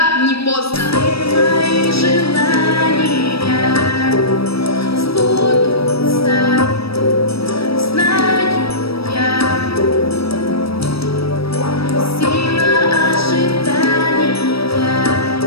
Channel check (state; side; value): late; right; 0.76 ms